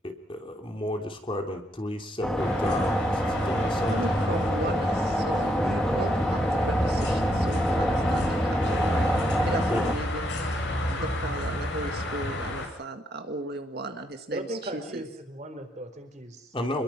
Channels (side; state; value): both; normal; correlation 0.76